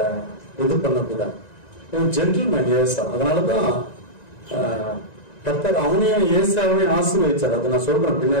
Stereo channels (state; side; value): late; right; 1.9 ms